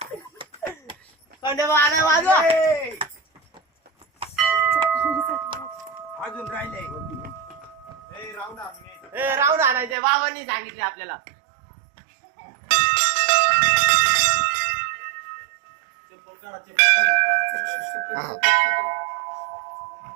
खंडोबा आलाय वाजवा अजून राहिले राऊंड आणायचे बाबांनी सांगितले आपल्याला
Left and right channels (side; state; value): left; drops out; at 10.0 s